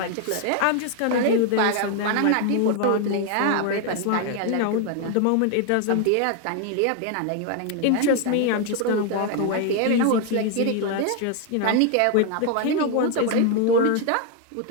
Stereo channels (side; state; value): both; different; correlation 0.01